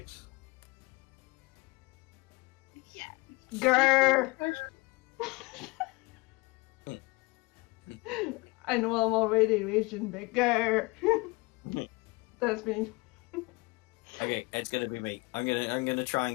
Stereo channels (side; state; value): right; quieter; 25.2 dB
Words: Yeah. Grr! I know I'm already raging, but grr! That's me. Okay, it's gonna be me. I'm gonna try